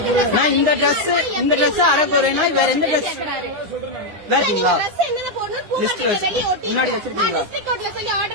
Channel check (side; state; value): left; late; 9.6 ms